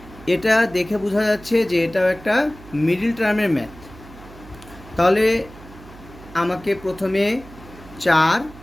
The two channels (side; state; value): right; noise; hum, 19 dB below the sound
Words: এটা দেখে বোঝা যাচ্ছে যে এটাও একটা মিডল টার্মের ম্যাথ। তাহলে আমাকে প্রথমে 4